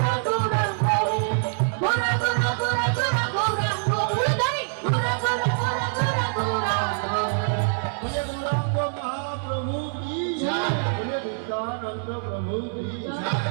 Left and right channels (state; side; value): silent; left; 62 dB below the other